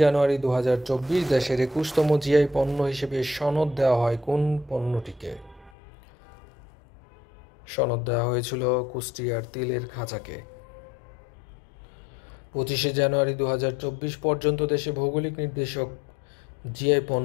জানুয়ারি 2024 দেশের 21তম জিআই পণ্য হিসেবে সনদ দেওয়া হয় কোন পণ্যটিকে? সনদ দেওয়া হয়েছিল কুষ্টিয়ার তিলের খাঁচাকে। 25 জানুয়ারি 2024 পর্যন্ত দেশে ভৌগোলিক নির্দেশক জিআই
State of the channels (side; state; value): right; drops out; at 5.7 s